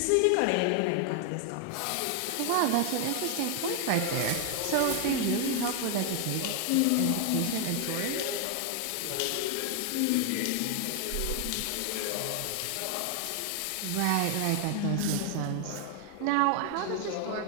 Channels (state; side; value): different; both; correlation 0.00